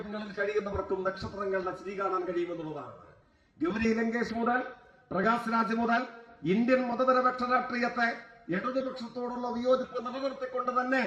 കഴിയുന്നവർക്കും നക്ഷത്രങ്ങളുടെ ചിരി കാണാൻ കഴിയുമെന്നുള്ളതാണ്. ഗൗരി ലങ്കേഷ് മുതൽ പ്രകാശ് രാജ് മുതൽ ഇന്ത്യൻ മതനിരപേക്ഷ രാഷ്ട്രീയത്തെ ഇടതുപക്ഷത്തോടുള്ള വിയോജിപ്പ് നിലനിർത്തിക്കൊണ്ട് തന്നെ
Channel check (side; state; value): both; identical; correlation 1.00